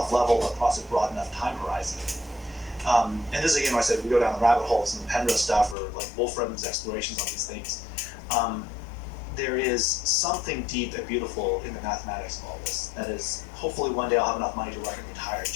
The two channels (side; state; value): right; drops out; at 5.8 s